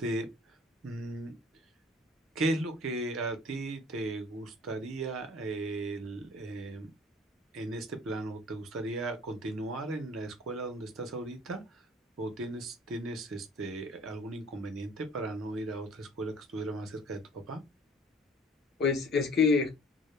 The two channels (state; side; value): normal; both; correlation 0.51